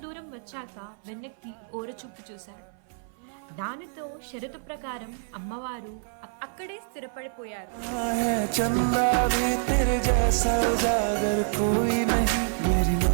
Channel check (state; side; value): silent; left; 57 dB below the other